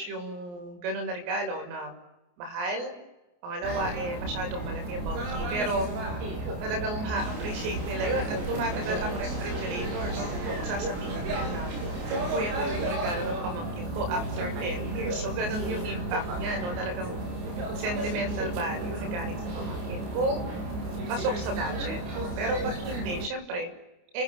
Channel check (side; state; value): left; late; 28 ms